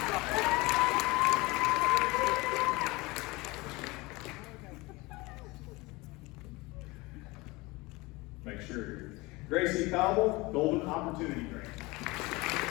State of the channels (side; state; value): right; quieter; 23.0 dB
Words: Make sure. Gracie Cobble, Golden Opportunity Grant.